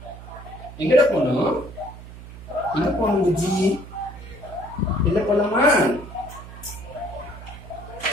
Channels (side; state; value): right; noise; hum, 15 dB below the sound